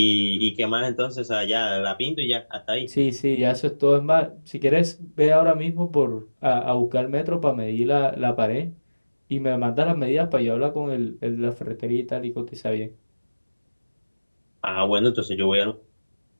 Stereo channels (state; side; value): inverted; both; correlation -1.00